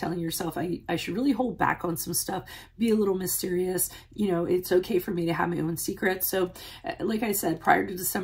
yourself, I should really hold back on some stuff, be a little mysterious. It's okay for me to have my own secrets. So like I said, prior to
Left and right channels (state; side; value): identical; both; correlation 1.00